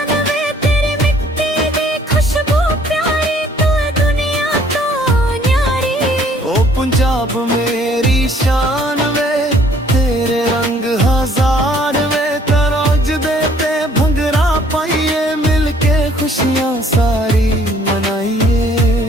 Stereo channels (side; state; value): both; normal; correlation 0.60